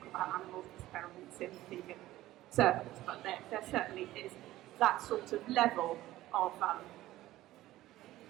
about animals experiments in vegan circles, but there certainly is that sort of level of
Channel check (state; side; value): quieter; left; 15.8 dB